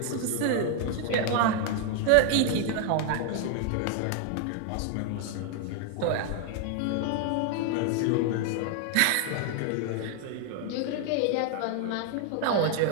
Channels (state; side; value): different; both; correlation 0.00